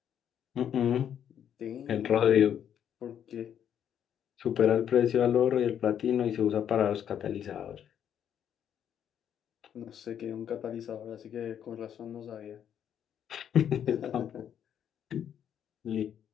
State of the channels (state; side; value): quieter; right; 9.2 dB